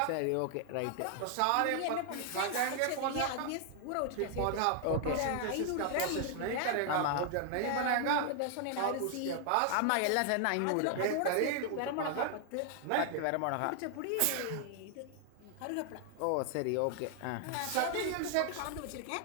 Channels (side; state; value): both; different; correlation 0.00